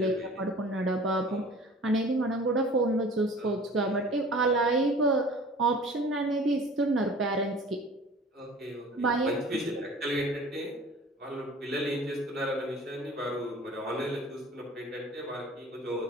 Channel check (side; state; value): both; normal; correlation 0.45